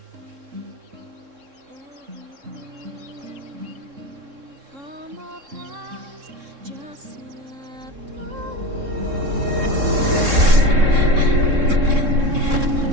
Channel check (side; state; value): left; late; 3.7 ms